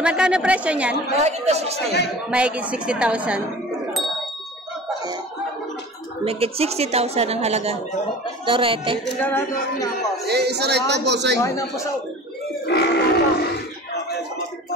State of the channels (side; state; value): both; normal; correlation 0.40